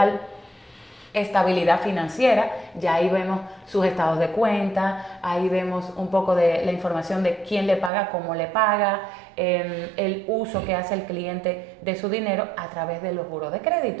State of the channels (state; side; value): drops out; left; at 7.9 s